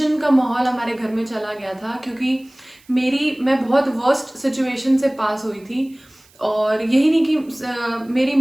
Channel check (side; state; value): right; noise; hiss, 29 dB below the sound